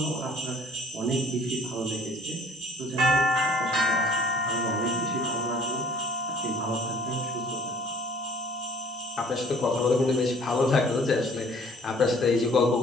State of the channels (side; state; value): both; normal; correlation 0.54